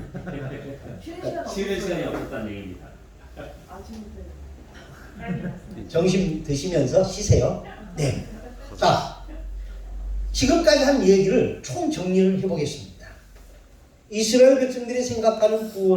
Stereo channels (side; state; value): both; identical; correlation 1.00